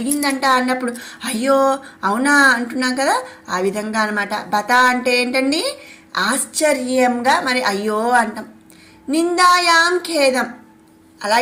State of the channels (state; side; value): identical; both; correlation 1.00